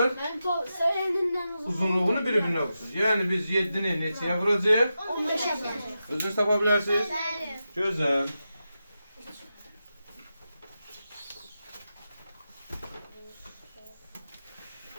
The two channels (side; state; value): both; inverted; correlation -0.90